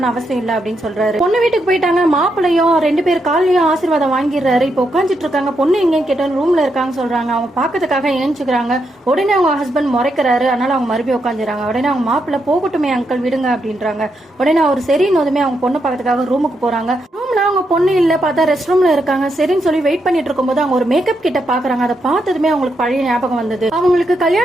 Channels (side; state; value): both; normal; correlation 0.81